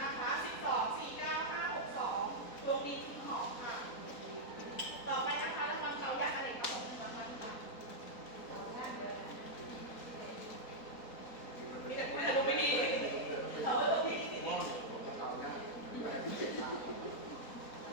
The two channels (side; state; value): right; late; 4.2 ms